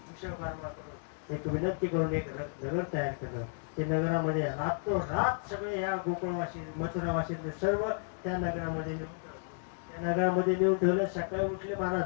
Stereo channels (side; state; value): right; silent; digital silence